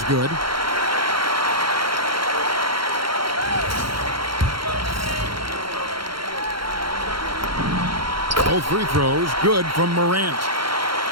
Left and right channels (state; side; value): late; left; 0.73 ms